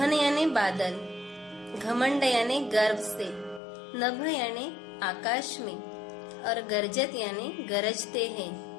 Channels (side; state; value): right; drops out; at 3.6 s